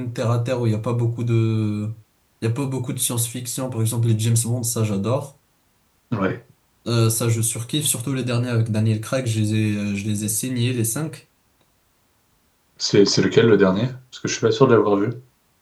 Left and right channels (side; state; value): both; identical; correlation 1.00